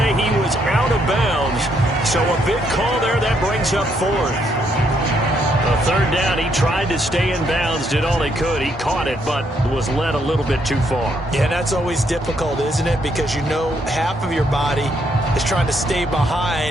he was out of bounds. So a big call there. That brings up fourth. A third down, he tried to stay in bounds, did all he could. He caught it, but was led a little bit too far. Yeah, that's always difficult, isn't it? Because you know half of your body is trying to stay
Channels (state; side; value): normal; both; correlation 0.73